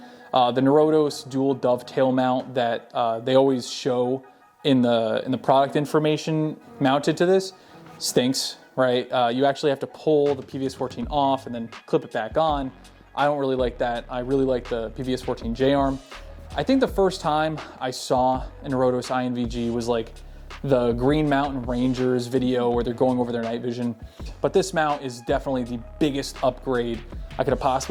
The Norotos dual dovetail mount that they always show in the product information mounted to this stinks, right? You actually have to pull the PVS-14 off and then clip it back on. I don't really like that. I really like the PVS-14 J-arm. I think the first time I saw a Norotos INVG was like the Green Mountain Rangers video where they're going over their night vision. But this mount is definitely the biggest upgrade I could have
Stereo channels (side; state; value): both; identical; correlation 1.00